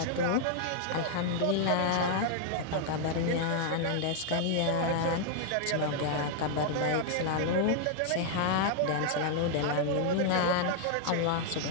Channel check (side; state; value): both; different; correlation 0.00